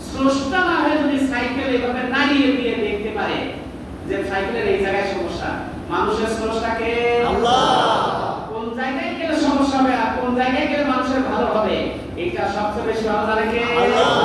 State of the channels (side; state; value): both; identical; correlation 1.00